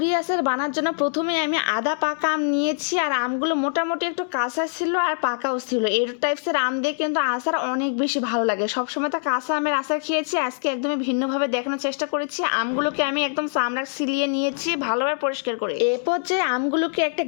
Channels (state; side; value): silent; right; digital silence